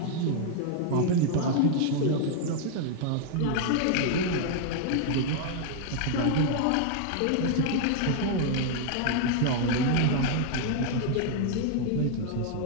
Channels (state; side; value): different; both; correlation 0.00